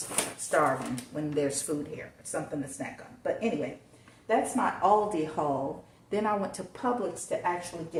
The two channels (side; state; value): both; identical; correlation 1.00